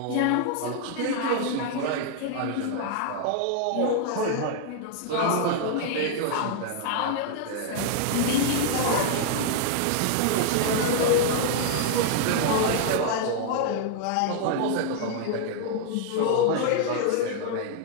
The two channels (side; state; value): both; different; correlation 0.00